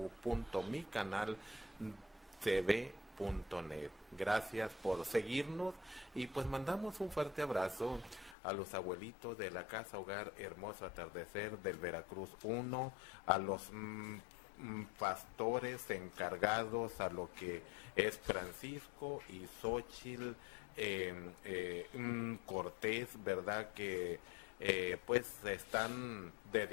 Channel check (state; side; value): drops out; right; at 8.3 s